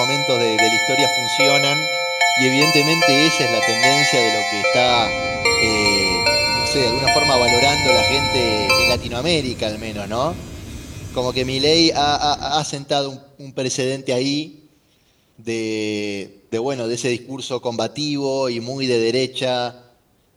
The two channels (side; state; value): both; identical; correlation 1.00